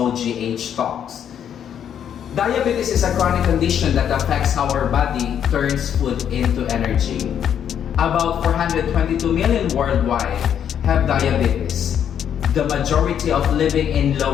Talks. Diabetes is a chronic condition that affects how our body turns food into energy. About 422 million worldwide have diabetes, the majority of living in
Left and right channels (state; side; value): quieter; right; 9.0 dB